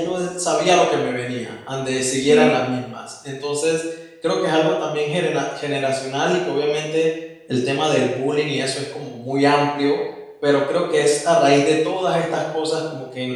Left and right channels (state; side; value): identical; both; correlation 1.00